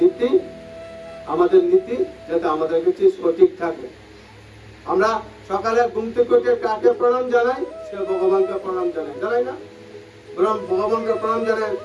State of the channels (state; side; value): identical; both; correlation 1.00